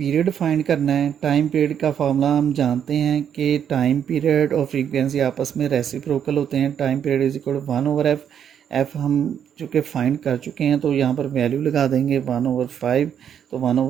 फाइंड करना है। टाइम पीरियड का फार्मूला हम जानते हैं कि टाइम पीरियड और फ्रीक्वेंसी आपस में रेसिप्रोकल होते हैं। Time period is equal 1/f। F हम चूँकि फाइंड कर चुके हैं तो यहाँ पर वैल्यू लगा देंगे 1/5। तो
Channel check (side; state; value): left; quieter; 8.7 dB